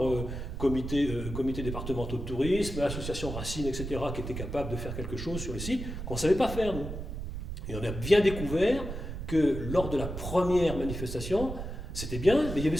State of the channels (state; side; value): noise; right; rumble, 6 dB below the sound